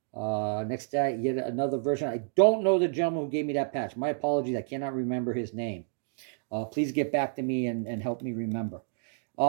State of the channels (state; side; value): silent; left; digital silence